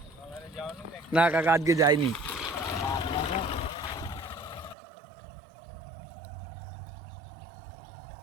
না কাকা, আজকে যাইনি।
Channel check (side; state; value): left; drops out; at 4.8 s